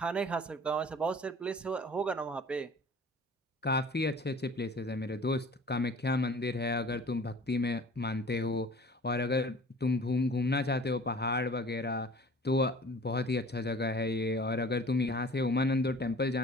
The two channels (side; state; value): both; normal; correlation 0.46